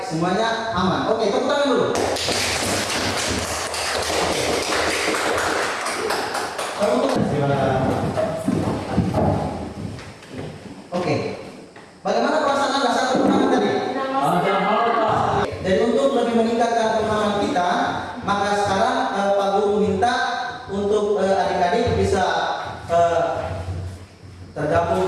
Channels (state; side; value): identical; both; correlation 1.00